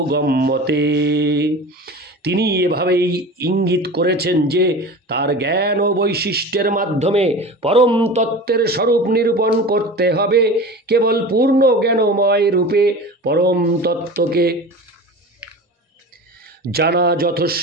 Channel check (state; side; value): normal; both; correlation 0.34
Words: তিনি এভাবেই ইঙ্গিত করেছেন যে তার জ্ঞান ও বৈশিষ্ট্যের মাধ্যমে পরম তত্ত্বের স্বরূপ নিরূপণ করতে হবে। কেবল পূর্ণ জ্ঞানময় রূপে পরম তত্ত্বকে জানা